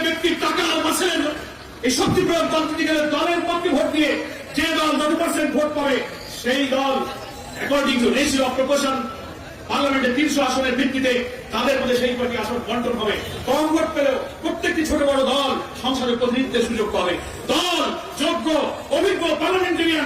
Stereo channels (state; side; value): identical; both; correlation 1.00